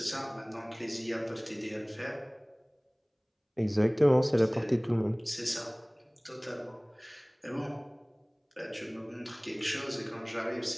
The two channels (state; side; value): identical; both; correlation 1.00